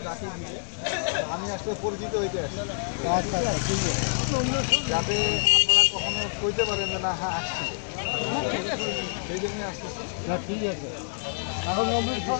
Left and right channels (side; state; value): right; silent; digital silence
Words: যাকে দিবে, আমি আসলে পরিচিত হইতে আসি। আচ্ছা আচ্ছা, ঠিক আছে। যাতে আপনারা কখনো কইতে পারেন যে না হ্যাঁ আসছিল, সেই জন্যই আসতেছি। না ঠিক আছে। এখন